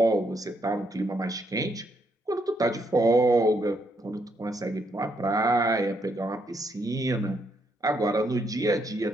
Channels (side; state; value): both; normal; correlation 0.75